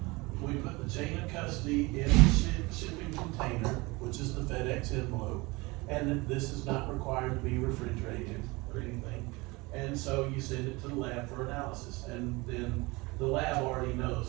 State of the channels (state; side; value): quieter; left; 24.0 dB